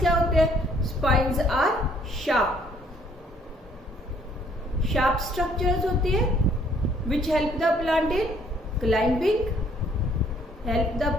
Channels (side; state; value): both; normal; correlation 0.63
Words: होते हैं, स्पाइन्स आर शार्प स्ट्रक्चर्स होती है विच help the plant in